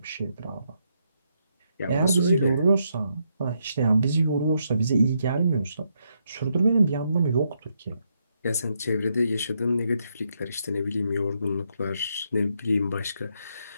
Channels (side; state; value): both; inverted; correlation -0.79